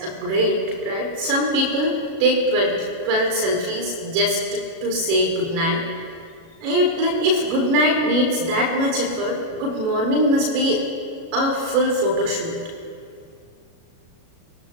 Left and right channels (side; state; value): left; late; 37 ms